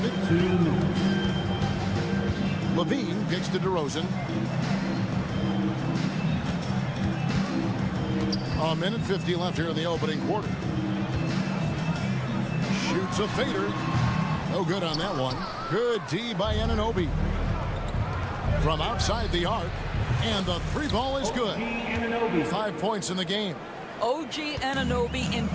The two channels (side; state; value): both; identical; correlation 1.00